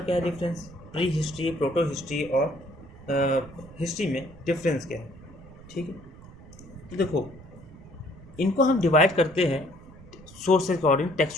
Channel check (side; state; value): right; noise; rumble, 19 dB below the sound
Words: क्या है, difference, prehistory, protohistory और हिस्ट्री में डिफरेंस क्या है। ठीक है, तो देखो, इनको हम डिवाइड करते हैं सोर्स के अकॉर्डिंग,